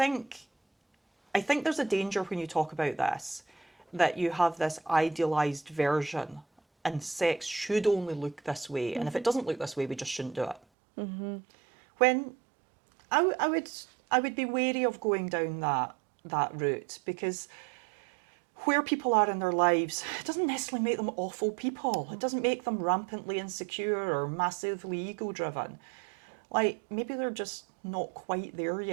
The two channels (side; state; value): left; drops out; at 10.6 s